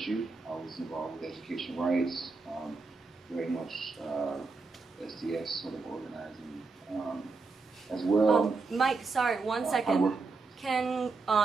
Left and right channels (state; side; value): quieter; left; 4.2 dB